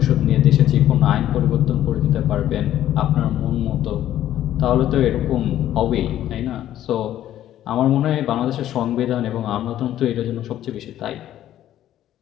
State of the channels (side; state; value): right; quieter; 12.3 dB